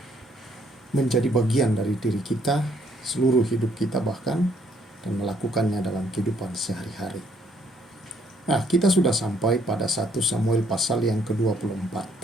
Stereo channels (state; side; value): normal; both; correlation 0.66